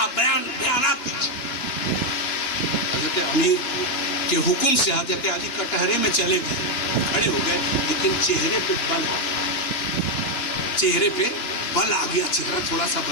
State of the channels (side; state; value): right; late; 2.9 ms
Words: بیانات دیجیے۔ حضرت علی کے حکم سے حضرت علی کٹہرے میں چلے گئے، کھڑے ہو گئے، لیکن چہرے پہ بل آ گیا، چہرہ تھوڑا سا